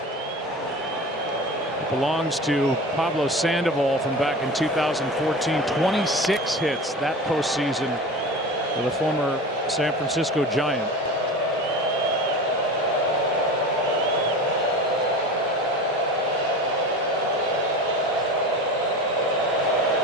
Belongs to Pablo Sandoval from back in 2014. 26 hits that postseason for the former San Francisco Giant.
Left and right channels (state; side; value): normal; both; correlation 0.32